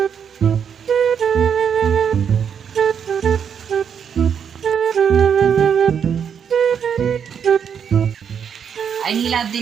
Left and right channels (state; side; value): quieter; left; 7.6 dB